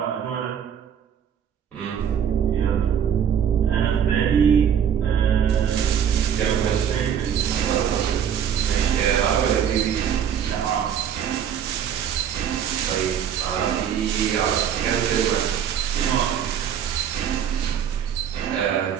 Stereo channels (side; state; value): left; quieter; 8.6 dB